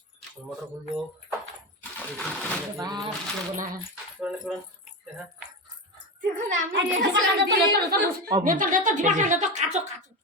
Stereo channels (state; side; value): normal; both; correlation 0.19